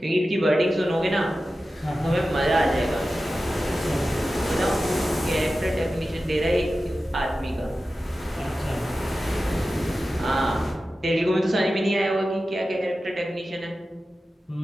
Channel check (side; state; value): both; normal; correlation 0.94